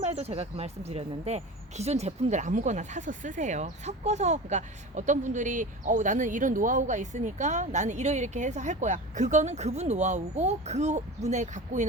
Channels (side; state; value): both; normal; correlation 0.32